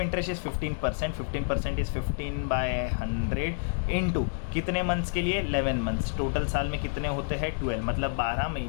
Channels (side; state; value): right; silent; digital silence